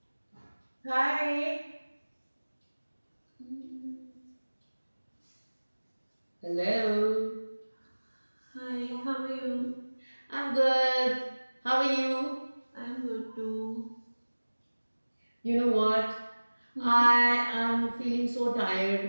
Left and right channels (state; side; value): inverted; both; correlation -1.00